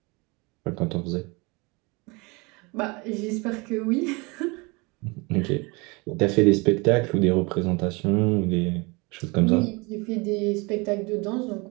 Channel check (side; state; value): left; quieter; 27.4 dB